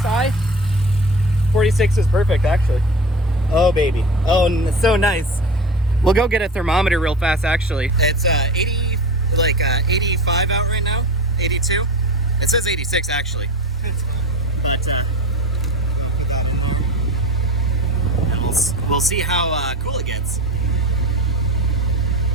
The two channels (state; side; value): normal; both; correlation 0.32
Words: 46 is perfect, actually. Oh, baby. Oh, so nice. We'll go get a thermometer real fast, actually. It's 85 out right now. 82. It says 86, actually. But and we'll see how cool it gets.